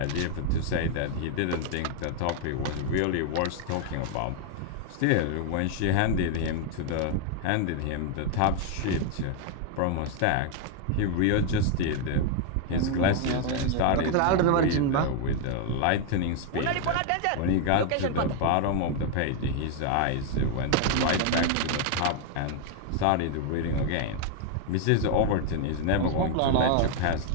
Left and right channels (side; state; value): both; different; correlation 0.00